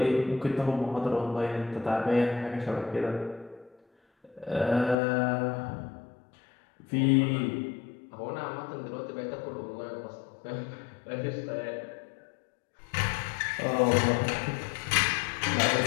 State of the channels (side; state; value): right; drops out; at 5.0 s